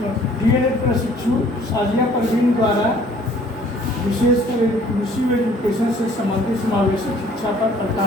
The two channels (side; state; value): both; normal; correlation 0.56